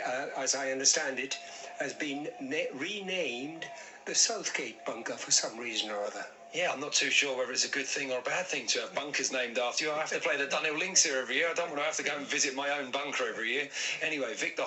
I understand it, has been renamed the Southgate bunker for some reason or other. Yeah, I'm not too sure whether it's a good thing or a bad thing to have bunkers named after you. I have to play the Dunhill Links here every year. I don't want to have to go and visit my own bunker every year. Anyway, Victor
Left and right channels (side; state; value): both; identical; correlation 1.00